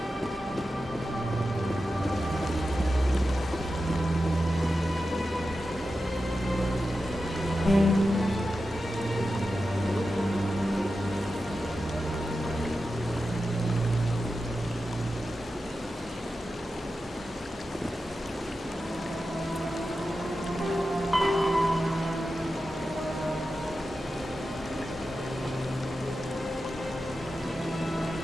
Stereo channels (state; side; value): normal; both; correlation 0.91